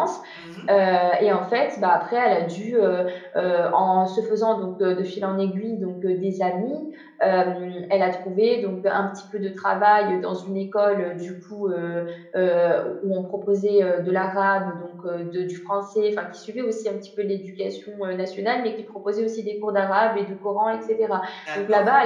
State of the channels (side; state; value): both; identical; correlation 1.00